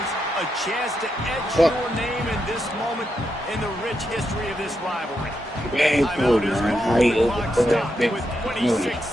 a chance to etch your name in this moment in the rich history of this rivalry. Timeout is called, clock stopped with 26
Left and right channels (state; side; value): normal; both; correlation 0.83